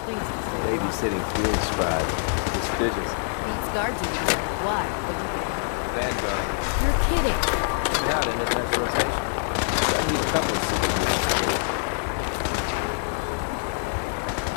things. Babysitting field scribe. Prestigious. Beats guard duty. Why? Vanguard. You're kidding. Yeah, in advanced rotation. I need a couple of super mutants.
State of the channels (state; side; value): silent; right; digital silence